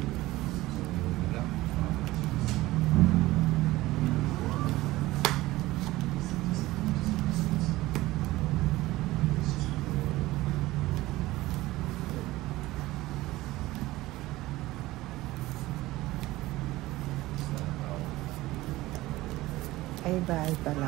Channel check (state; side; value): quieter; left; 18.0 dB